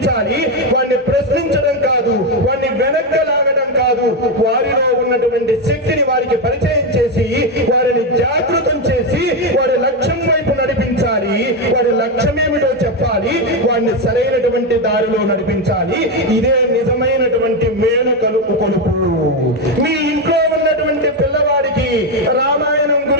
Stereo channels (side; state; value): both; normal; correlation 0.09